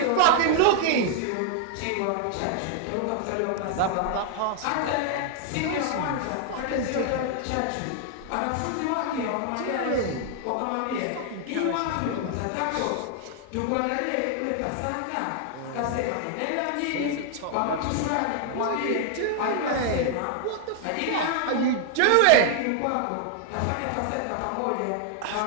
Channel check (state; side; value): different; both; correlation 0.00